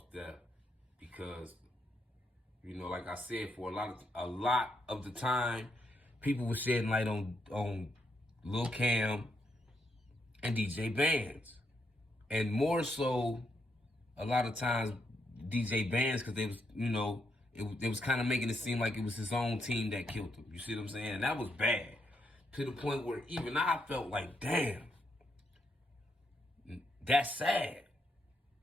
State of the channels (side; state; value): both; normal; correlation 0.79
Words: death, because, you know, like I said, for a lot of the time, people were shedding light on Lil Cam and DJ Bandz, and more so a lot of times DJ Bandz, because they was, you know, it was kind of making it seem like it was his own team that killed him. You see what I'm saying? And that was bad, to the point where even I felt like, damn, that's sad.